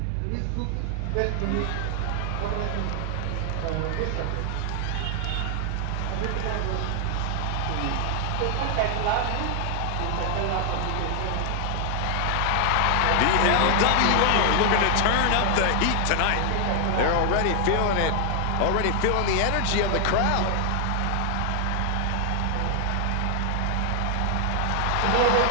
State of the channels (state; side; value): different; both; correlation 0.00